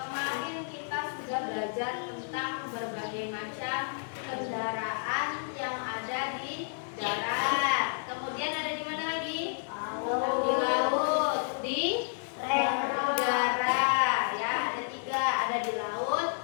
kita sudah belajar tentang berbagai macam kendaraan yang ada di darat. Kemudian ada di mana lagi? Di laut, di udara. Ya, ada tiga. Ada di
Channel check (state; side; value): silent; right; digital silence